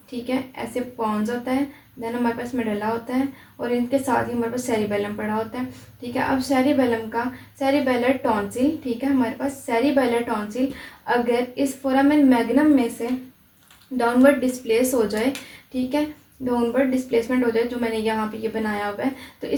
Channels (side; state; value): both; identical; correlation 1.00